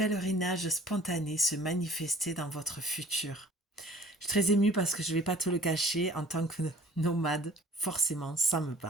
spontanés se manifester dans votre futur. Je suis très émue parce que je ne vais pas te le cacher, en tant que nomade, forcément, ça me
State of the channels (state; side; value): normal; both; correlation 0.50